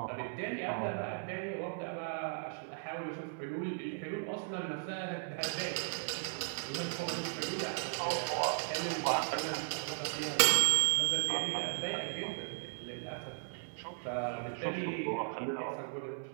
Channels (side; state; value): left; silent; digital silence